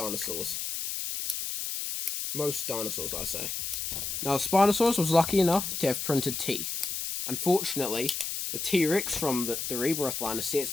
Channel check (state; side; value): noise; left; hiss, 3 dB below the sound